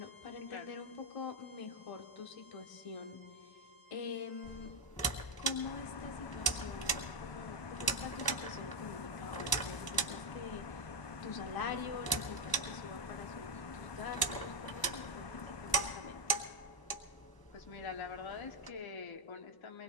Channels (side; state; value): right; late; 1.0 ms